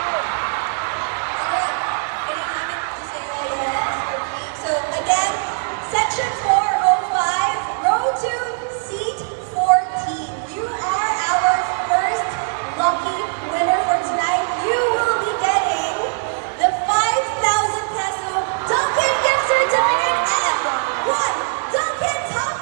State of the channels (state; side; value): silent; left; 65 dB below the other